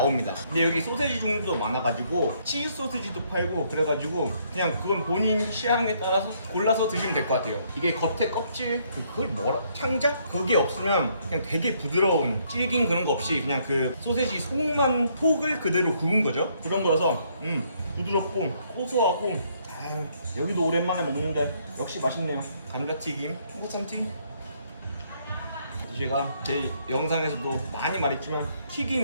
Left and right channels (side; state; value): both; inverted; correlation -0.69